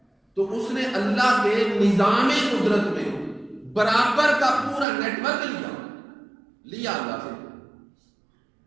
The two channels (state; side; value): drops out; left; at 4.9 s